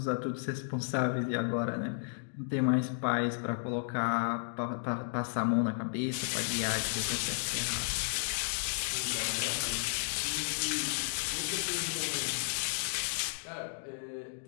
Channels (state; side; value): silent; right; digital silence